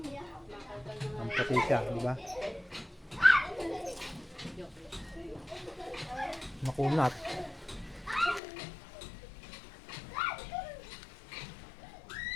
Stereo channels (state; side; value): drops out; right; at 8.4 s